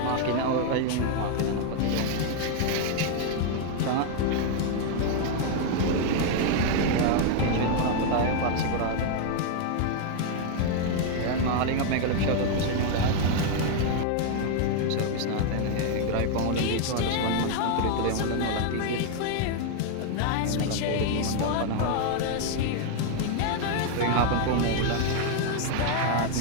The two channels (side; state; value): both; different; correlation 0.00